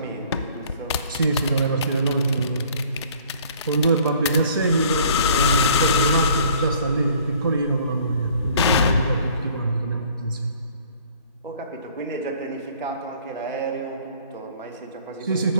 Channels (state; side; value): inverted; both; correlation -0.55